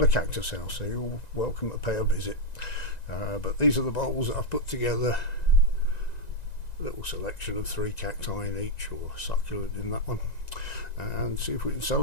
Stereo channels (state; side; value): late; right; 1.9 ms